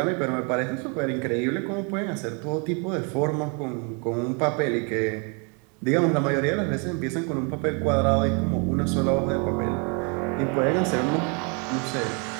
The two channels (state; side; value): quieter; left; 35.1 dB